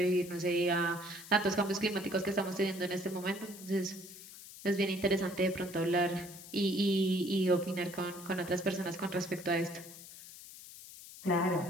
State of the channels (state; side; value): noise; left; hiss, 15 dB below the sound